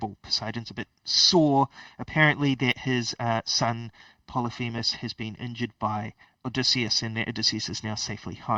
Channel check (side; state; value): both; identical; correlation 1.00